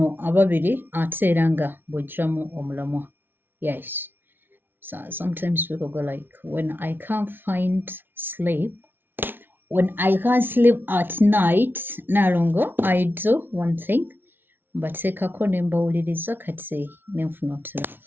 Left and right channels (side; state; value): left; late; 0.10 ms